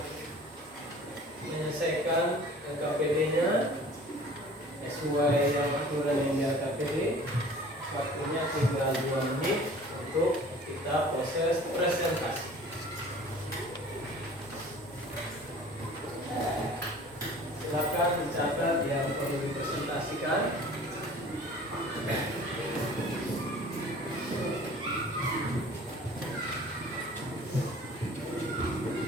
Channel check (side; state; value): both; normal; correlation 0.46